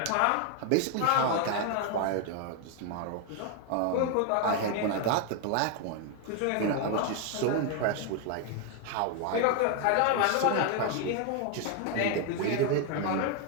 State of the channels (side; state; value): both; different; correlation 0.01